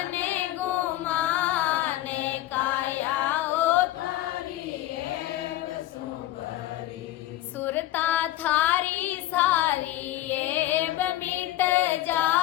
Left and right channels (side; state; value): right; quieter; 14.9 dB